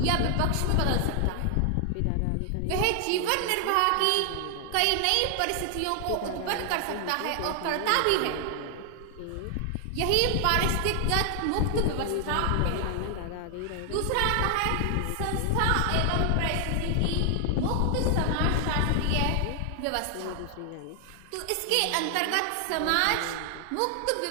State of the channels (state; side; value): different; both; correlation 0.00